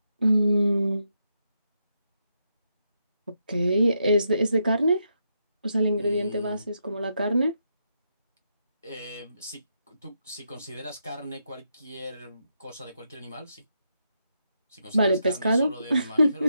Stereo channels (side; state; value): both; inverted; correlation -0.81